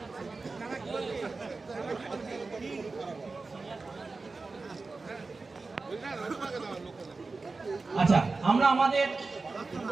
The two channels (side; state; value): left; quieter; 3.9 dB